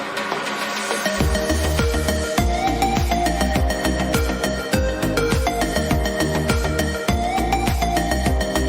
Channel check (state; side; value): identical; both; correlation 1.00